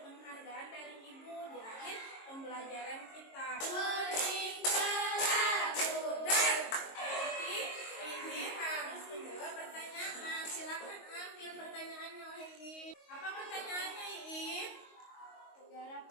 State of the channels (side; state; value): right; late; 22 ms